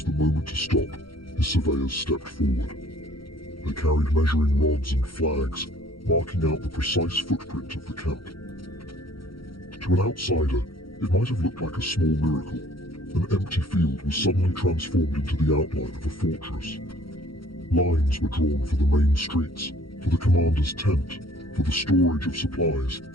the moment to stop, his surveyors stepped forward. They carried measuring rods and flags, marking out the precise footprint of the camp. To an outsider, it might have looked like a small miracle. An empty field was suddenly transformed into the outline of a fortress. Lines were drawn for the main streets, for the commander's tent, for the storage of supplies,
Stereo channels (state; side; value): late; right; 0.74 ms